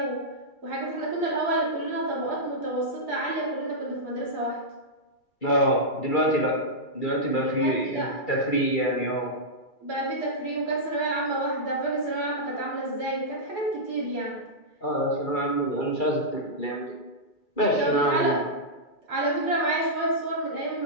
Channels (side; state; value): right; late; 2.3 ms